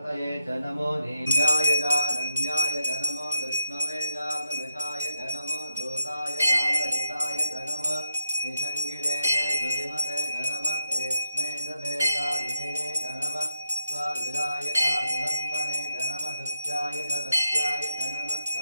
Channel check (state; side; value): inverted; both; correlation -0.82